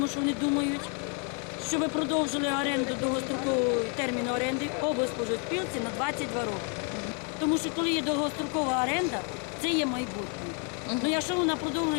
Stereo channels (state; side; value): quieter; right; 38.5 dB